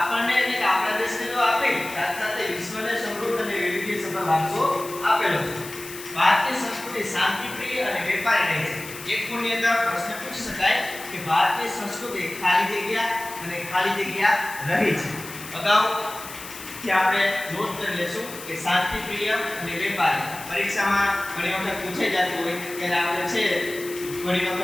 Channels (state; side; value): noise; left; hiss, 13 dB below the sound